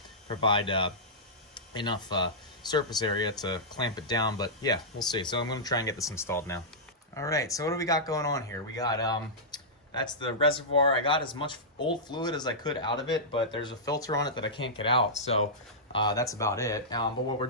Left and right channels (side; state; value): both; normal; correlation -0.13